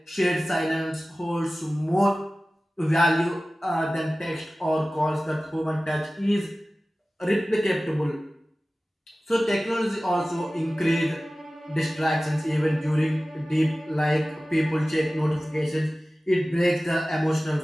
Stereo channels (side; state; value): both; normal; correlation 0.96